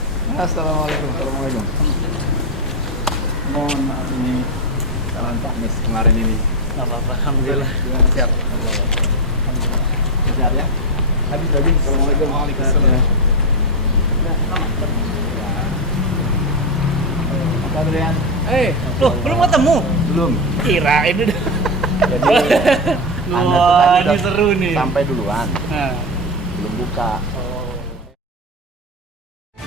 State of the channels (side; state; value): both; normal; correlation 0.09